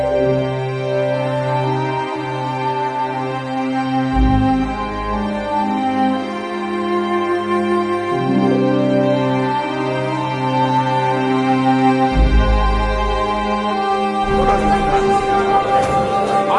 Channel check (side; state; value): both; identical; correlation 1.00